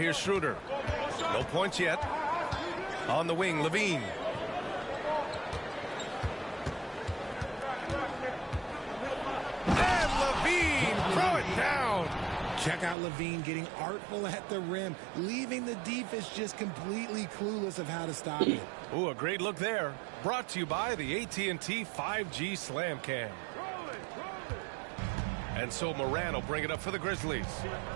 Schroeder. No points yet. On the wing, Levine. And Levine, throw it down. Check out Levine getting artful at the rim, leaving the defense just completely clueless of how to stop it. Ooh, a great look there. Brought to you by the AT&T 5G Slam Cam. And so Moran will bring it up for the Grizzlies.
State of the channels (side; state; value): left; drops out; at 13.0 s